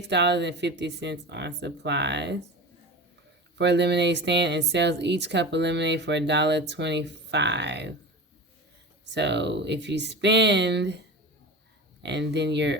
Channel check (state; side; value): normal; both; correlation 0.30